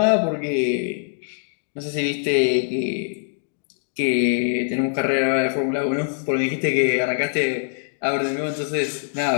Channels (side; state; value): right; silent; digital silence